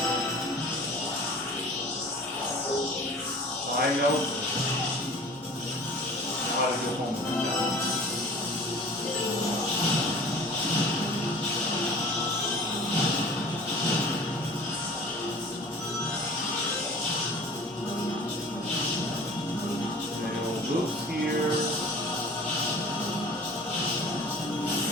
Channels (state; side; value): normal; both; correlation 0.44